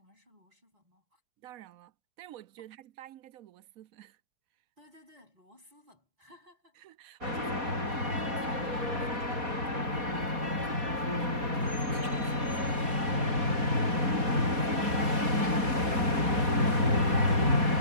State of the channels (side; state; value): left; late; 4.2 ms